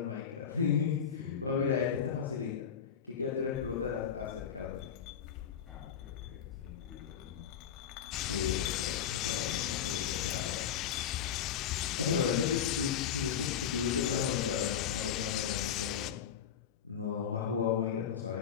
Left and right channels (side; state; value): right; quieter; 8.3 dB